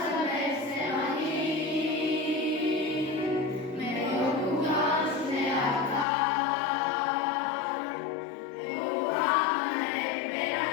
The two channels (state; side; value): drops out; right; at 6.1 s